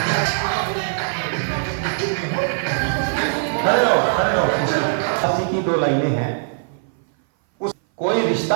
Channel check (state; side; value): silent; left; 59 dB below the other